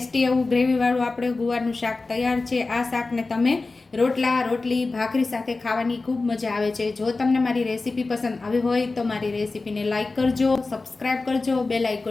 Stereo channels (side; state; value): right; quieter; 3.6 dB